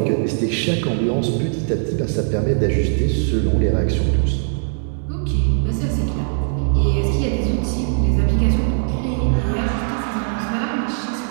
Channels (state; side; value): silent; left; digital silence